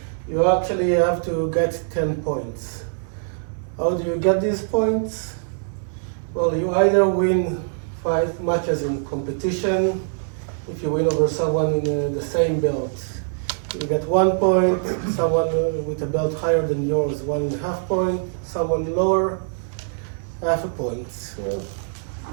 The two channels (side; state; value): left; silent; digital silence